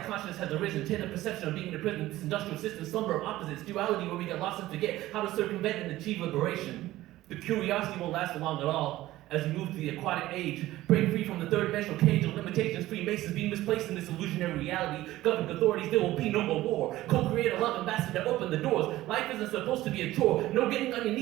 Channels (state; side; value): quieter; left; 16.0 dB